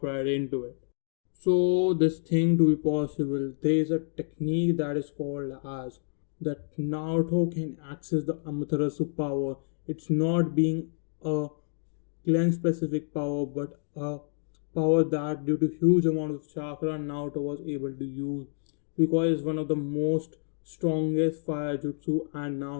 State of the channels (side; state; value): right; silent; digital silence